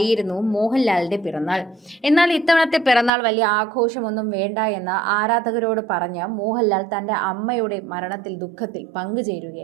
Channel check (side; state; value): left; drops out; at 3.1 s